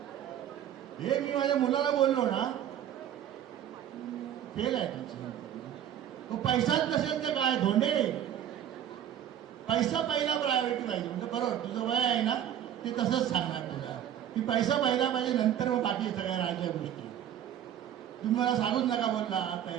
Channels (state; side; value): quieter; left; 10.4 dB